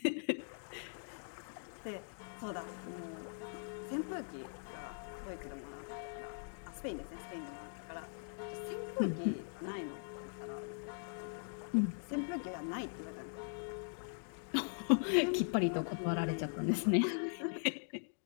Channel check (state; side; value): silent; right; digital silence